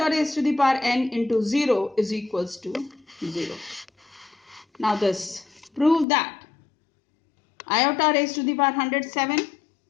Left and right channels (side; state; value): right; drops out; at 6.1 s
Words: raised to the power n into 0 is equals to 0. Now this, prove that iota raised to the power 107